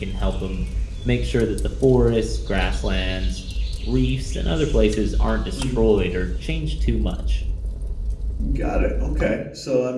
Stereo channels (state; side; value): identical; both; correlation 1.00